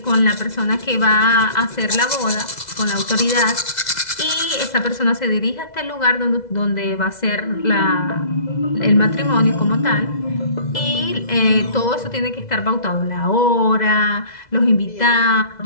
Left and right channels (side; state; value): right; late; 2.0 ms